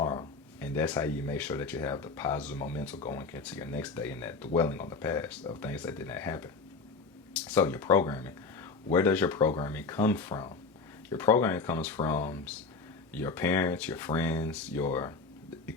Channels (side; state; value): right; quieter; 4.3 dB